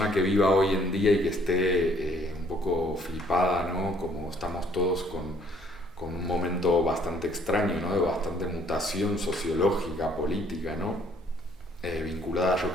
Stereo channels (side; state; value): both; normal; correlation 0.63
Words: que viva hoy en día y que esté un poco flipada, ¿no? Como estamos todos con un momento bastante extraño, ¿no? De bastante mutación sociológica, política, ¿no? Vinculada, yo